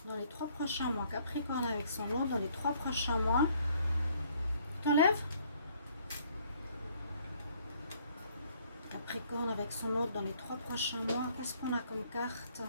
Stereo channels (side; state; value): both; inverted; correlation -0.63